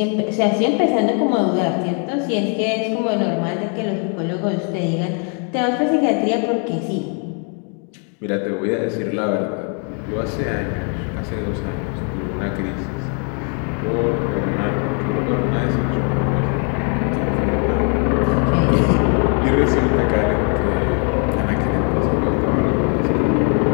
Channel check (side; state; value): right; quieter; 39.9 dB